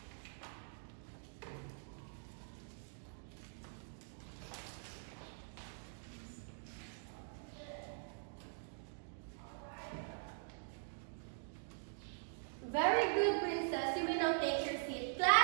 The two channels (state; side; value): silent; left; digital silence